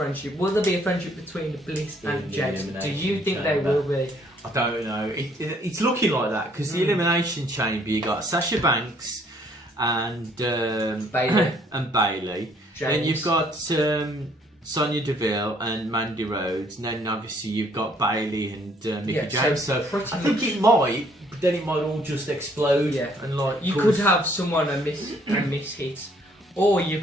Will there be a friendship between Bliss and James? Do you think they will be? I don't know. It's looking like that because the Elimination Chamber, you got Sasha Banks and Bailey. and Bailey. Then you've got Sonya Deville and Mandy Rhodes, and then obviously you've got Bailey and Mickie James. So I think it might, but then it might all just explode. Yeah, and like you could have someone a miss hit, or you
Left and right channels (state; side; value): normal; both; correlation 0.63